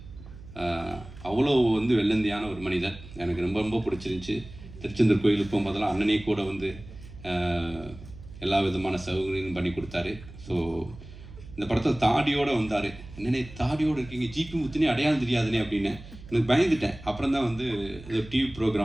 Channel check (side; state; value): right; noise; hum, 16 dB below the sound